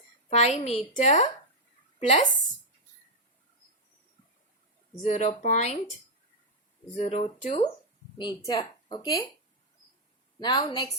5 meter plus 0.02 meter. Okay, now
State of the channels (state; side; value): normal; both; correlation -0.03